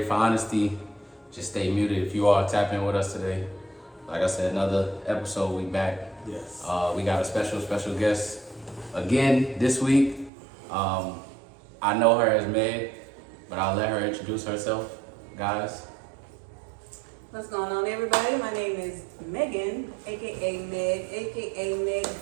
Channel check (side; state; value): left; drops out; at 10.3 s